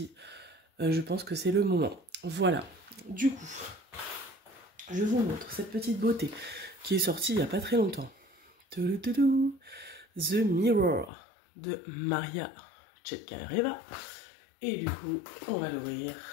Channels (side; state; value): right; drops out; at 11.1 s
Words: je pense que c'est le moment. Voilà, du coup, je vous montre cette petite beauté qui est sortie il n'y a pas très longtemps. The Mirror de Maria Chetkaeva. Et du coup, on va l'ouvrir.